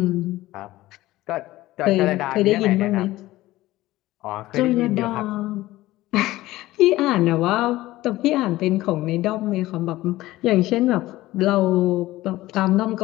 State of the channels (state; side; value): quieter; right; 17.0 dB